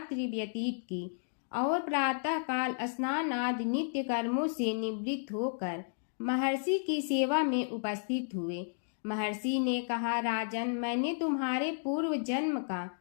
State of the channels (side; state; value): right; silent; digital silence